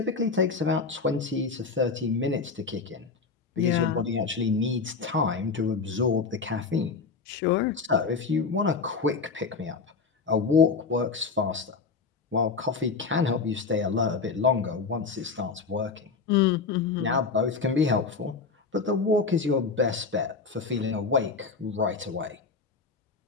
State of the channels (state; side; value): quieter; right; 4.7 dB